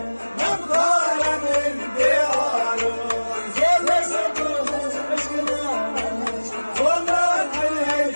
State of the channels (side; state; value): both; inverted; correlation -1.00